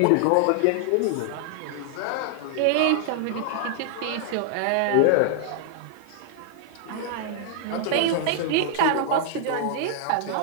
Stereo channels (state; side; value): different; both; correlation -0.01